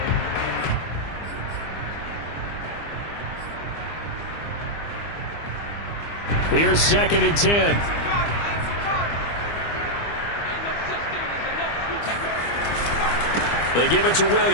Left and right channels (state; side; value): late; right; 25 ms